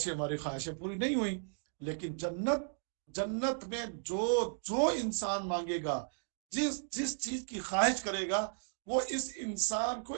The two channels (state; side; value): silent; left; digital silence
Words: سی ہماری خواہشیں پوری نہیں ہوئی، لیکن جنت میں جو انسان مانگے گا، جس چیز کی خواہش کرے گا، وہ اس انسان کو